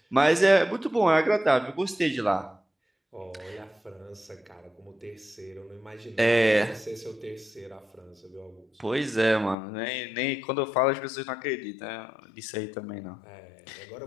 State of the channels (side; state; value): right; drops out; at 9.6 s